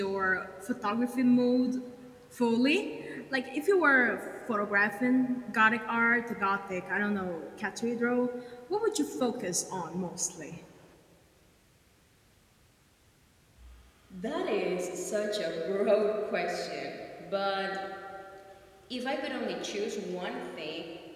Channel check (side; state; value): both; identical; correlation 1.00